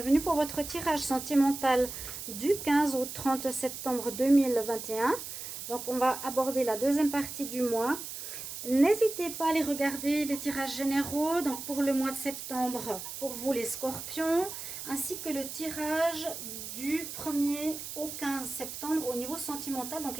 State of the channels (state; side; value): noise; right; hiss, 8 dB below the sound